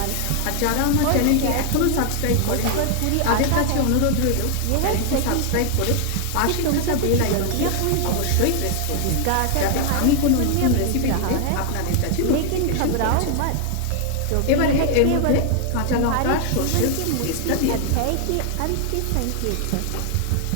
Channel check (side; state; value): both; different; correlation 0.00